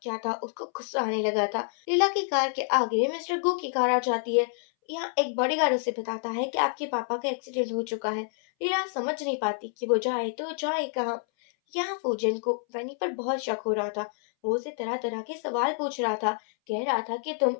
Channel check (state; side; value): silent; right; 59 dB below the other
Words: क्या था, उसको गुस्सा आने लगा था। लीला की कार के आगे मिस्टर गो की कार आ जाती है। यहाँ एक बॉडीगार्ड उसे बताता है कि आपके पापा का एक्सीडेंट हो चुका है। लीला समझ नहीं पाती कि वो जाए तो जाए कहाँ। यहाँ फूजन को वैनी पर बहुत शक हो रहा था। वो उसे तरह तरह के सवाल पूछ रहा था। कह रहा था कि तुम